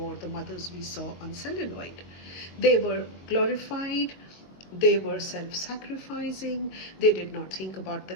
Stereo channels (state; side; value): late; right; 22 ms